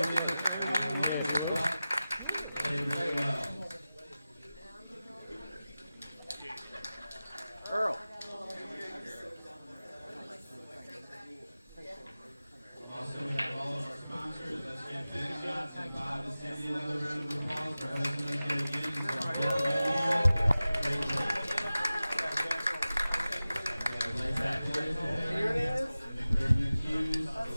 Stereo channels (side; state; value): both; inverted; correlation -0.96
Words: Played very well. Earl. Also, we have all of our sponsors. Let's give Big Shots and Bob and Cindy another round of applause for hosting us here again. Hughes,